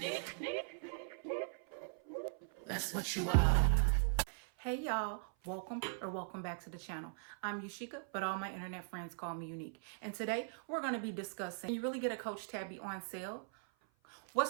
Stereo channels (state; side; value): silent; left; 51 dB below the other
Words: That's what you are. Hey y'all, welcome back to the channel. I'm Yusheika, but all my internet friends call me Yunique. And today we're going to be discussing, can you really get a Coach Tabby on sale?